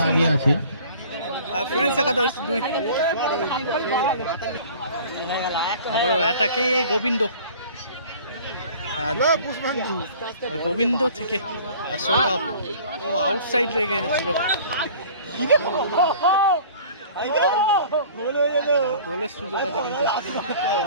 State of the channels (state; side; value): inverted; both; correlation -0.47